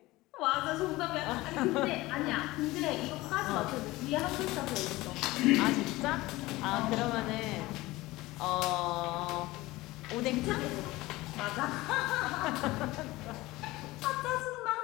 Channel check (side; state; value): right; quieter; 19.4 dB